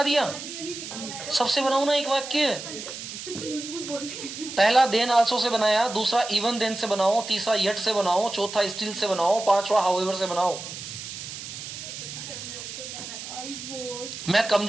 दिया, सबसे बनाऊ ना एक वाक्य। पहला देन आल्सो से बनाया, दूसरा इवन देन से बनाओ, तीसरा येट से बनाओ, चौथा स्टिल से बनाओ, पांचवा हाउएवर से बनाओ। I was. मैं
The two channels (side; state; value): right; noise; hiss, 9 dB below the sound